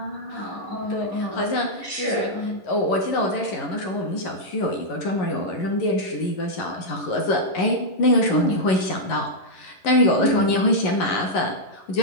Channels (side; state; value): right; late; 11 ms